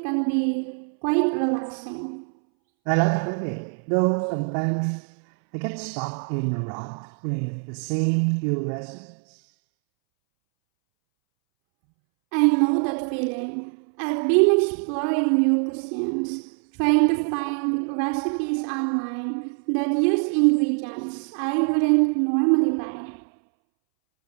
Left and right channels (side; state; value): left; silent; 63 dB below the other